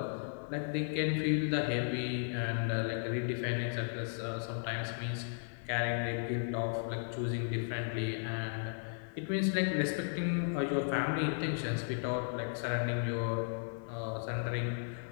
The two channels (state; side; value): silent; right; 54 dB below the other